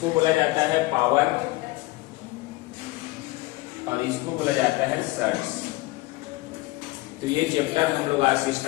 बोला जाता है पावर और इसको बोला जाता है सर्ट्स। तो ये चैप्टर हम लोग आज से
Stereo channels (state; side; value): quieter; right; 21.0 dB